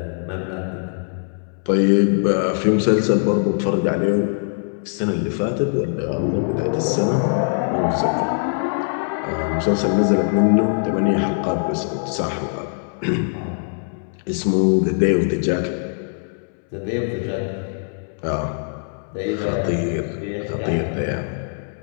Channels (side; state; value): right; silent; 64 dB below the other